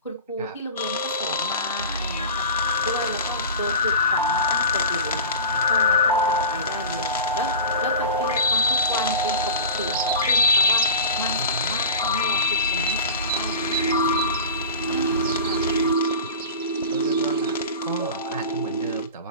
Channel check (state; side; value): inverted; both; correlation -0.32